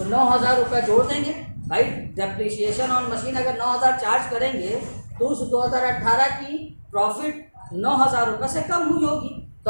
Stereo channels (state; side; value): inverted; both; correlation -1.00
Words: 9,000 रुपये जोड़ देंगे भाई। डेप्रिसिएशन ऑन मशीन अगर 9,000 चार्ज करेंगे तो उस 2018 की प्रॉफिट 9,000 रुपये से कम हुई होगी, तो